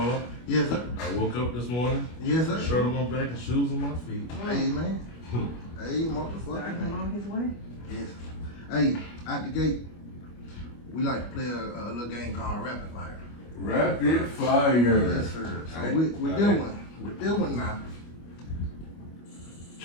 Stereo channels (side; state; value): right; late; 25 ms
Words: Yes, sir. I woke up this morning. Yes, sir. Shirt on my back and shoes on my feet. Hey, man. Hey, motherfucker, Starting man. on his way. Yes. Hey, out the gate, we like to play a little game called Rapid Fire. Rapid fire. Yes, sir. So Hey, with all that right. one, with that one now,